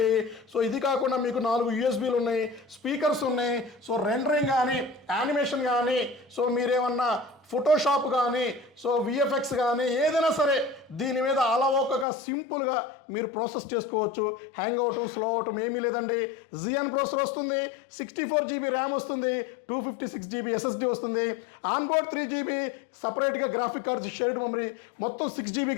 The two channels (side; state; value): right; drops out; at 12.1 s